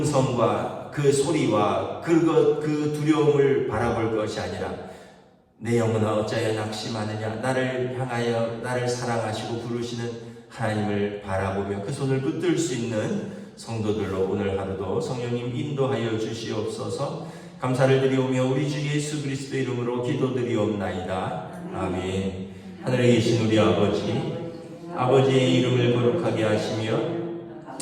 그 소리와 그 두려움을 바라볼 것이 아니라 내 영혼아 어찌하여 낙심하느냐, 나를 향하여 나를 사랑하시고 부르시는 하나님을 바라보며 그 손을 붙들 수 있는 성도들로 오늘 하루도 성령님 인도하여 주시옵소서. 감사를 드리오며 우리 주 예수 그리스도 이름으로 기도드리옵나이다. 아멘. 하늘에 계신 우리 아버지의 이름을 거룩하게 하시며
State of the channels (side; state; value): both; identical; correlation 1.00